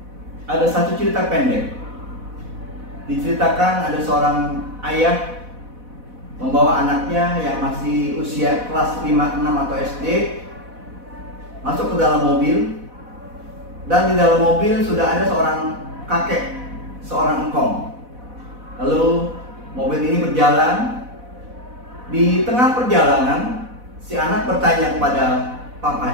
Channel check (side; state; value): left; late; 4.1 ms